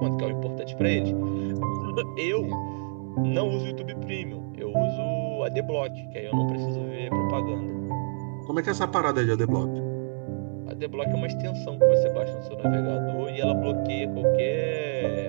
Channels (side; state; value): left; silent; digital silence